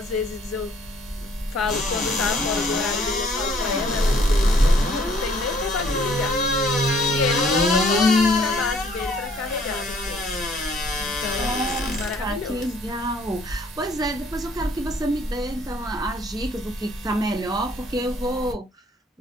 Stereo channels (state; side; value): normal; both; correlation 0.60